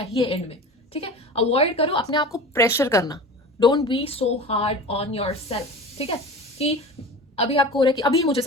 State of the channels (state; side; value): normal; both; correlation 0.35